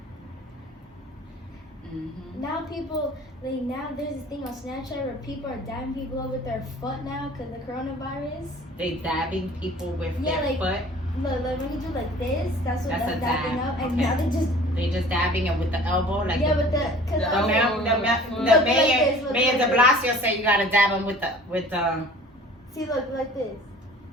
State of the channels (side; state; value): both; normal; correlation 0.47